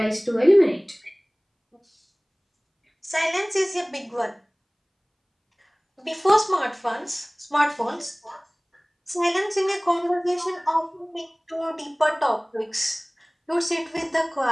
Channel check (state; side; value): identical; both; correlation 1.00